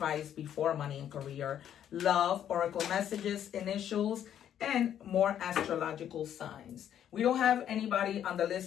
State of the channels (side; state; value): right; quieter; 10.0 dB